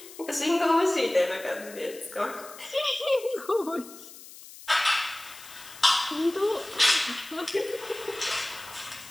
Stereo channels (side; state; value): left; noise; hiss, 17 dB below the sound